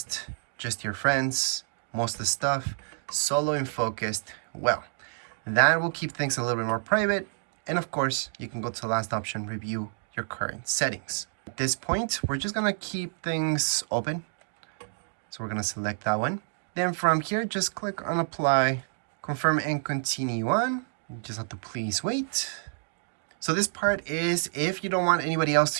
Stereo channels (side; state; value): left; silent; digital silence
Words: just your friends, most of the stuff. Solo and focused, well, that will keep things a little bit more private. And of course, you can go to the last option, review your current settings. At this point, we're just gonna keep things open. So we're gonna select that one. Then from here, just click on apply, confirm and continue on. You just have to please wait. So this part is, if you don't want anybody else